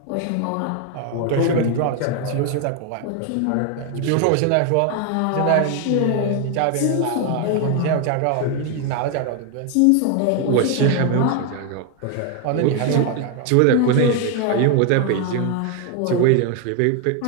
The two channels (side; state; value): both; different; correlation 0.01